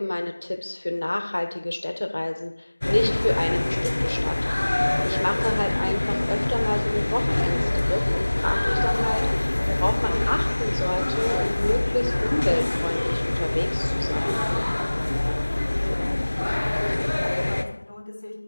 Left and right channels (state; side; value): inverted; both; correlation -1.00